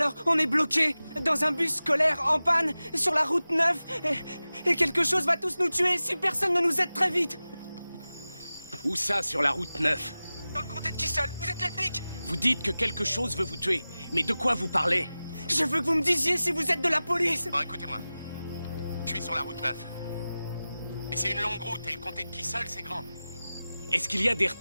on est bloqué dans un bus scolaire en panne sur la route 9 et quelque chose va tous nous tuer si personne ne nous aide très vite. Où ça, sur la route 9? Dans le comté de Kissel, vous êtes les flics? Vous dites que quelque chose veut vous tuer. Mais de quoi vous parlez? Je veux que vous me disiez si vous êtes de la police. Bon, écoutez-moi. Je suis sur la route 9. Et c'est une longue route, et le comté de Kissel, c'est grand. Est-ce qu'il y a des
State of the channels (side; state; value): both; inverted; correlation -0.96